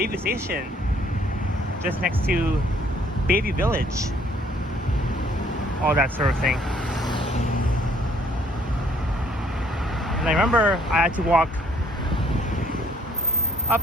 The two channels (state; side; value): normal; both; correlation 0.63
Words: Station, just next to Bayview Village, all that sort of thing. And I remember I had to walk up